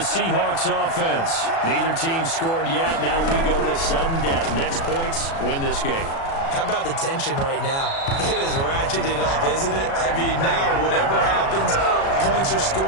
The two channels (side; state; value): right; late; 36 ms